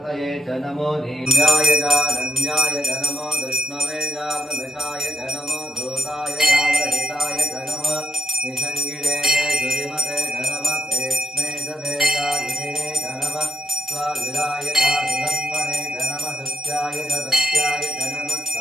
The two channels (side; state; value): both; normal; correlation 0.79